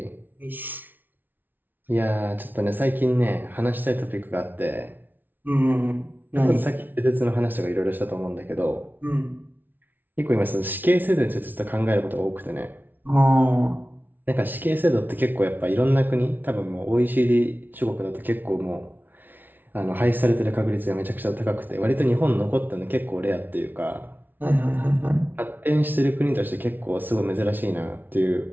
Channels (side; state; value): left; late; 0.089 ms